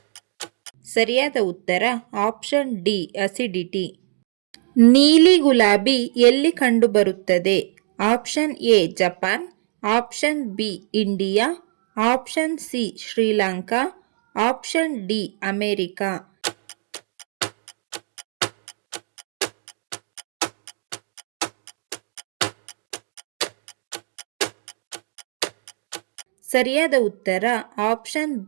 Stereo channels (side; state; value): left; silent; digital silence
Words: ಸರಿಯಾದ ಉತ್ತರ ಆಪ್ಷನ್ ಡಿ ಅಸಿಡಿಟಿ. ನೀಲಿ ಗುಲಾಬಿ ಎಲ್ಲಿ ಕಂಡುಬರುತ್ತದೆ? Option A Japan, option B India, option C Sri Lanka, option D America. ಸರಿಯಾದ ಉತ್ತರ ಆಪ್ಷನ್